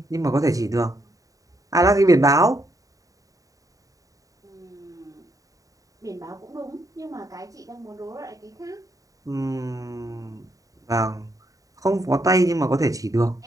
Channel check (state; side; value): late; left; 0.16 ms